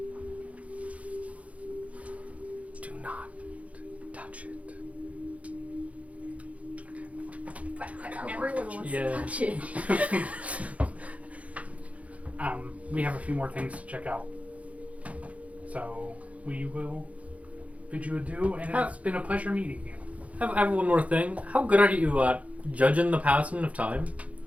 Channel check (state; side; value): late; left; 0.066 ms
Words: Do not touch it. Everyone wants Yeah. to touch it. We have a few more things to check out. So we will bid you adieu, and it's been a pleasure meeting you. I have one more thing. How good are you at judging the passing of time?